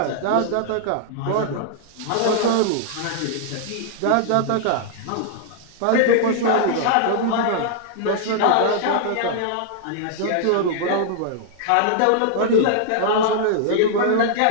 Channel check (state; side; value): different; both; correlation -0.01